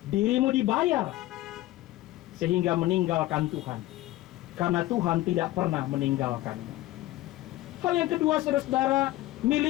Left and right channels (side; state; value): right; quieter; 16.7 dB